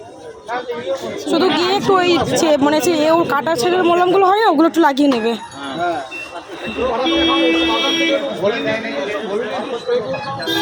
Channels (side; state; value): both; identical; correlation 1.00